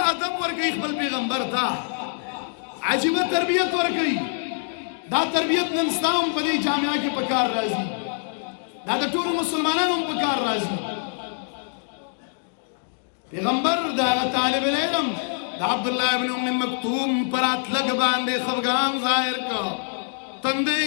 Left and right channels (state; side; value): silent; right; digital silence